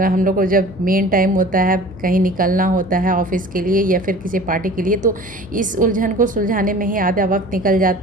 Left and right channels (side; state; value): left; noise; hum, 19 dB below the sound